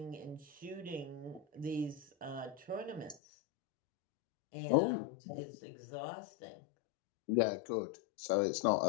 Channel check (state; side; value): drops out; right; at 3.2 s